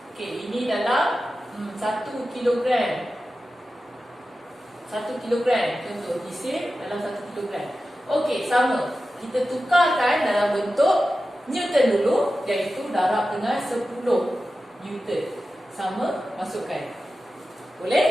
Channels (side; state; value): both; normal; correlation 0.93